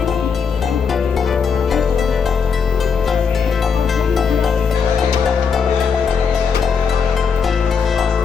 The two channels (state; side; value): quieter; right; 6.0 dB